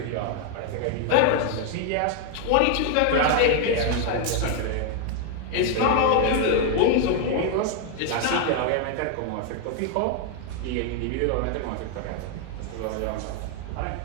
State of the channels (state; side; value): different; both; correlation 0.00